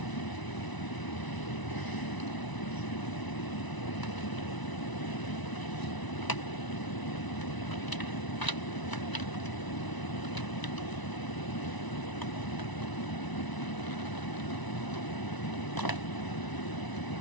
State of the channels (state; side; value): late; right; 1.0 ms